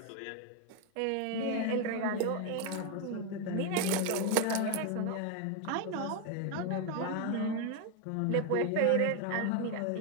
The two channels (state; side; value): different; both; correlation 0.01